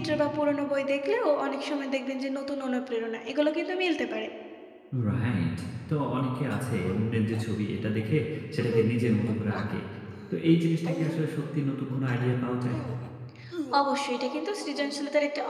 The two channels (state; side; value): identical; both; correlation 1.00